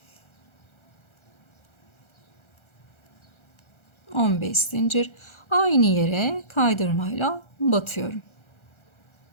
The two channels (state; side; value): late; right; 1.4 ms